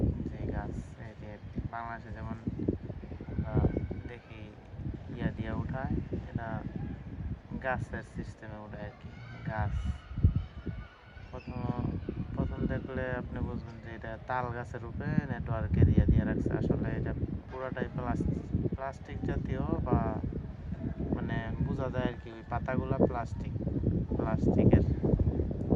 যে গাছ, এই যে বাংলাদেশে যেমন আমরা দেখি ইয়া দিয়া উঠায়, এটা গাছের সিস্টেমে উঠায় আর কি। গাছ প্রথম প্রথম দেখলে আপনি বুঝবেন যে এটা তাল গাছের উপরে নেটওয়ার্কের ইয়া দিয়ে রাখছে। আসলে এটা পুরাটাই প্লাস্টিক জাতীয়, বা মানে বোঝা যায় আর কি, ওই পাতাগুলা প্লাস্টিকের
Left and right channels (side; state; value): both; identical; correlation 1.00